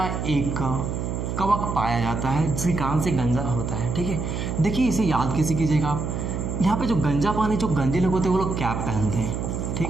एक कवक पाया जाता है जिसके कारण से गंजा होता है, ठीक है। देखिए इसे याद कैसे कीजिएगा आप, यहाँ पे जो गंजा पानी जो गंजे लोग होते हैं वो लोग कैप पहनते हैं, ठीक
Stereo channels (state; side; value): noise; right; hum, 3 dB below the sound